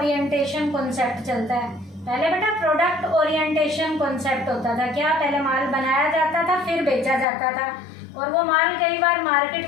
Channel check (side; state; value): right; drops out; at 7.2 s